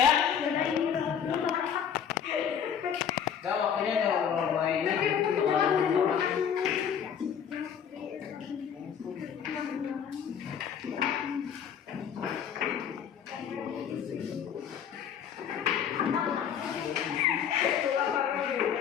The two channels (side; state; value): right; quieter; 8.1 dB